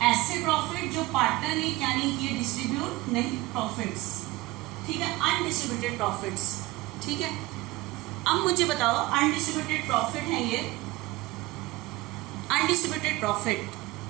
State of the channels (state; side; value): quieter; left; 20.2 dB